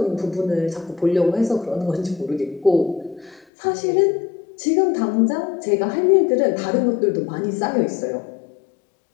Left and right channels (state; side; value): drops out; right; at 3.5 s